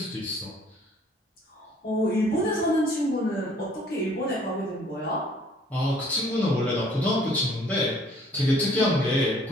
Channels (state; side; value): normal; both; correlation 0.58